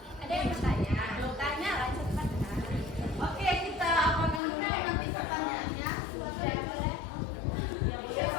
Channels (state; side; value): drops out; right; at 4.4 s